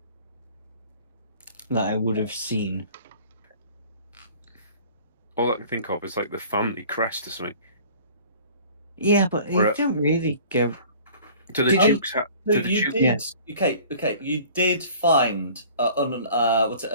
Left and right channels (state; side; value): inverted; both; correlation -0.47